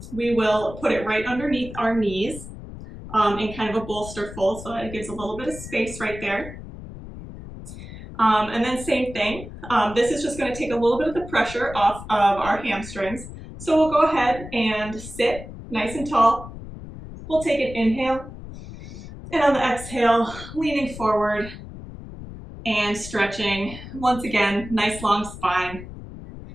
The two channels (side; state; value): left; noise; rumble, 13 dB below the sound